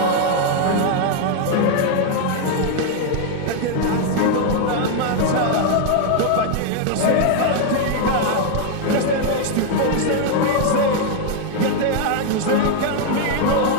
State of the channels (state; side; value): different; both; correlation 0.00